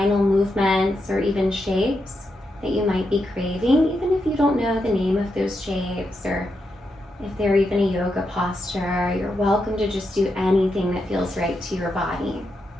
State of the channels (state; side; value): normal; both; correlation 0.84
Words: movements or even shapes that you might be craving, even if you don't know the name of those shapes, or if they're even a yoga posture. You're welcome to just do anything that feels right to your body.